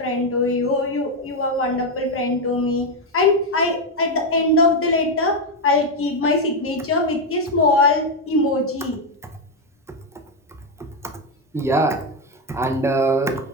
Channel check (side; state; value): both; normal; correlation 0.06